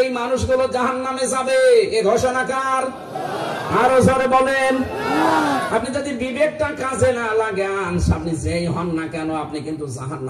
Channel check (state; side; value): identical; both; correlation 1.00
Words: এই মানুষগুলো জাহান্নামে যাবে। এ ঘোষণা কার? আরো জোরে বলেন। আপনি যদি বিবেকটা কাজে না লাগান, আপনি যেই হন না কেন, আপনি কিন্তু